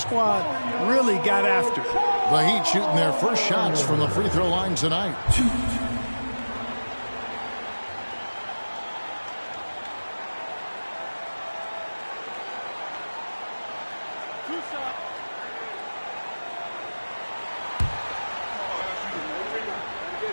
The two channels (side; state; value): both; inverted; correlation -1.00